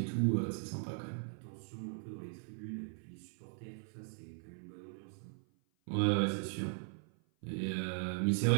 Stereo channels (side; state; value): left; silent; 52 dB below the other